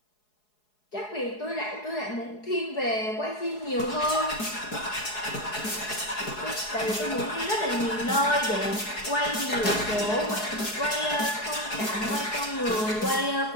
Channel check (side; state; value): right; late; 4.7 ms